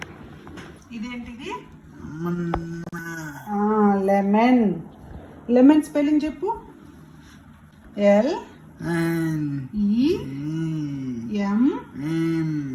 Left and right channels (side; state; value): both; identical; correlation 1.00